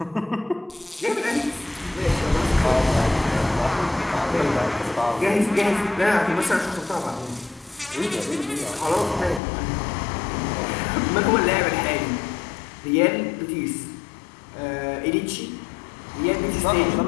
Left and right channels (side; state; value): right; drops out; at 9.4 s